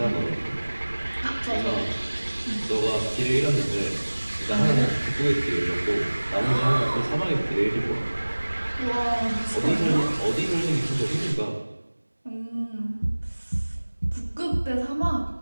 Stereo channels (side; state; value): both; inverted; correlation -1.00